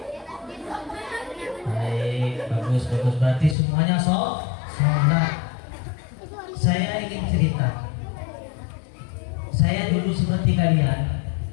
Baik, bagus. Berarti semuanya sholat. Saya ingin cerita. Saya dulu seperti kalian,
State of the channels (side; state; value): right; drops out; at 3.6 s